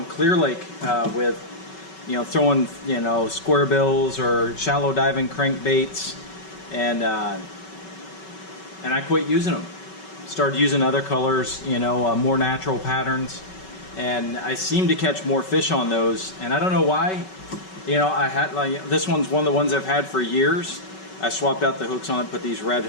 Clear Lake with, throwing, square bills or shallow diving crankbaits, and I quit using them. Started using other colors, more natural patterns, and I seem to catch more fish on those, and I don't know why. I had this one's one of the ones I've had for years. I swapped out the hooks on it, put these red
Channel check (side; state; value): right; late; 5.3 ms